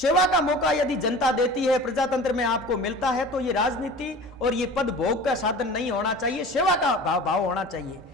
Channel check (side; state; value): both; normal; correlation 0.39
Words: का मौका यदि जनता देती है, प्रजातंत्र में आपको मिलता है, तो ये राजनीति और ये पद भोग का साधन नहीं होना चाहिए, सेवा का भाव होना चाहिए।